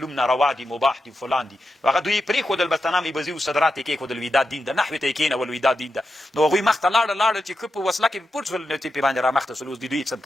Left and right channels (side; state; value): both; normal; correlation 0.88